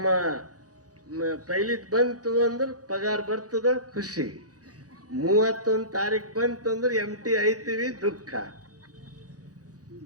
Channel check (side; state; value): left; late; 0.67 ms